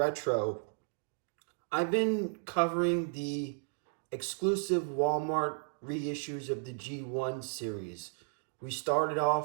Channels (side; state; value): left; silent; digital silence